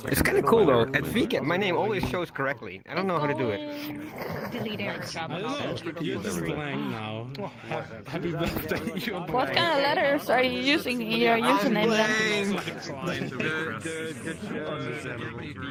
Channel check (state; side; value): identical; both; correlation 1.00